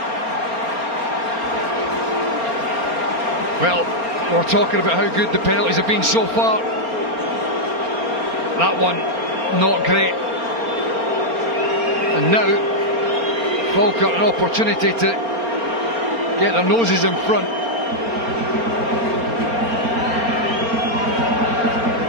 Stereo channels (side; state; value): left; late; 4.3 ms